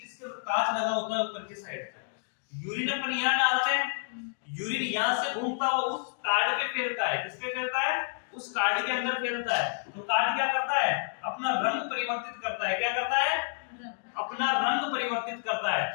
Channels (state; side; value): silent; right; digital silence